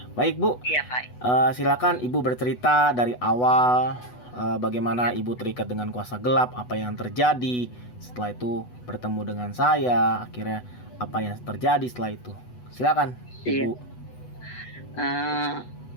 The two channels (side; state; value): right; late; 8.1 ms